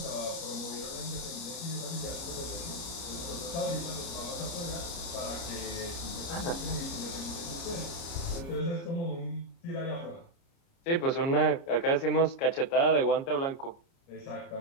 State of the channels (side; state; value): right; late; 30 ms